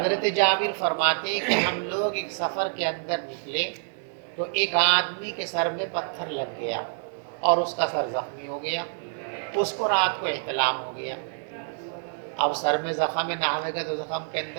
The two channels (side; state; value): left; silent; 60 dB below the other